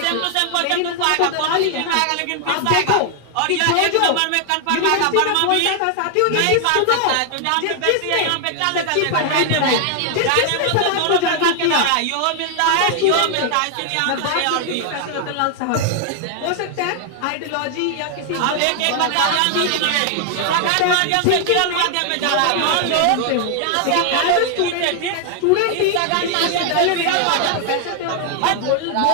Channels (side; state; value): both; different; correlation 0.00